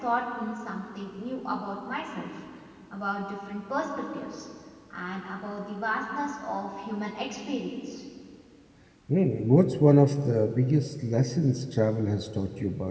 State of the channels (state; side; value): identical; both; correlation 1.00